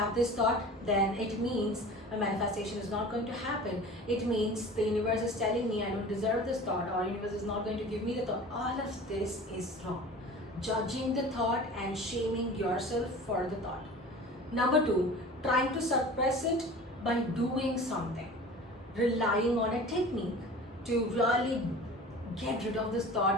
this thought, then it means my manifestation is not going to happen. It means the universe is telling me I don't deserve this thought, or universe is not going to give me the thought. All of this is wrong. Judging the thought and shaming yourself for the thought. Number two, trying to suppress it by doing something. Relying on a technique to really get rid of this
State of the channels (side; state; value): both; normal; correlation 0.39